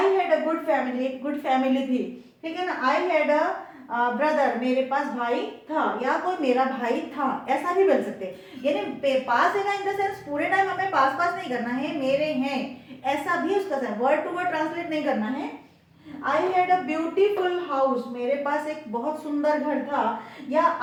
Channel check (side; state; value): both; identical; correlation 1.00